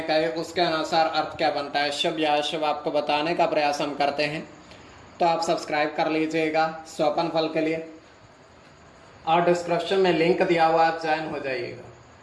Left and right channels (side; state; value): both; identical; correlation 1.00